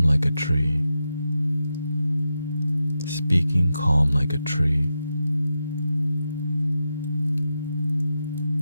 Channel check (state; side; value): inverted; both; correlation -0.88